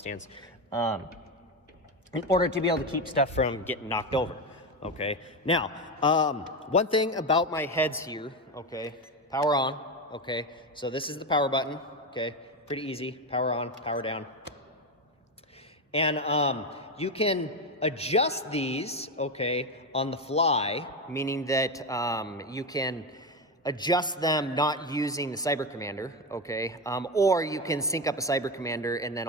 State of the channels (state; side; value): normal; both; correlation 0.14